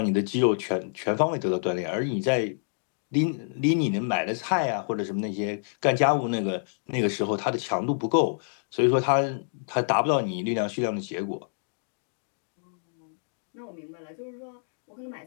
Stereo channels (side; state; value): right; silent; digital silence